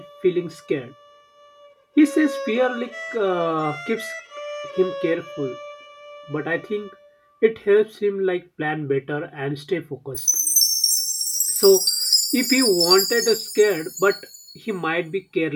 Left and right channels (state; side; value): identical; both; correlation 1.00